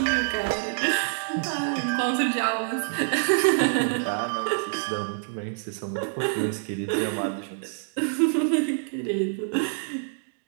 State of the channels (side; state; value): left; silent; digital silence